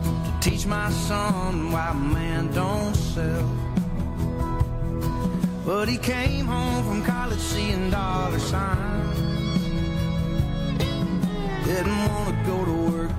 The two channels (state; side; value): identical; both; correlation 1.00